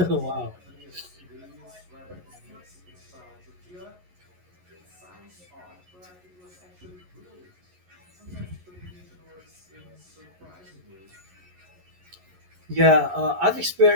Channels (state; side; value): late; left; 11 ms